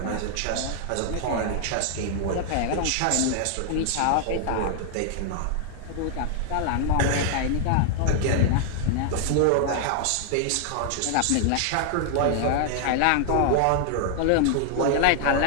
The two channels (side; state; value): both; different; correlation 0.00